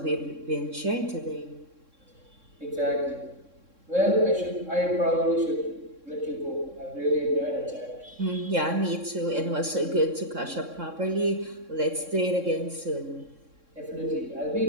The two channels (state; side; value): late; left; 3.6 ms